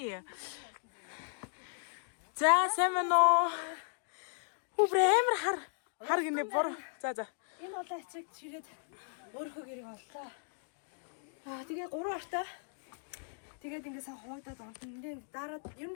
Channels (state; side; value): silent; right; digital silence